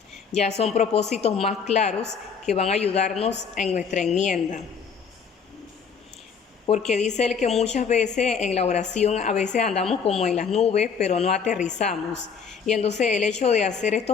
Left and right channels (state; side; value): quieter; right; 6.2 dB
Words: Ya son propósitos más claros que van a ayudarnos en nuestra enmienda. Porque dice él que muchas veces en la oración a veces andamos como en las nubes, pero no aterrizamos. Y entonces el hecho de hacer